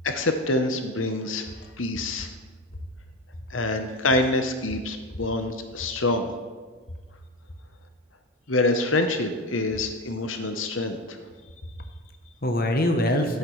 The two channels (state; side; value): normal; both; correlation 0.23